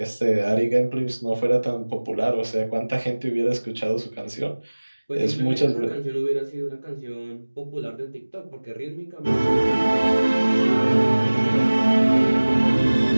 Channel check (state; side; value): inverted; both; correlation -1.00